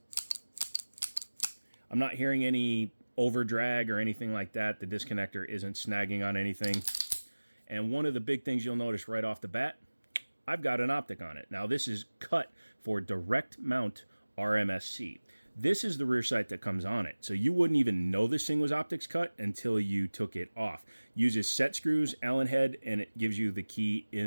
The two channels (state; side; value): inverted; both; correlation -1.00